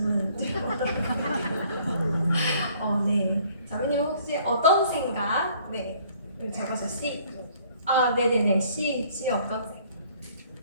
드려보도록 할게요. 네. 자매님 혹시 어떤 생각? 네. 적어서 C. 네네네. C 어떤 생각?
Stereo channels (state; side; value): inverted; both; correlation -0.59